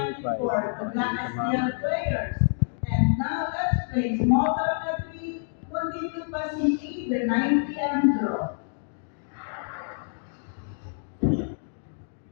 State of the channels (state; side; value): silent; right; digital silence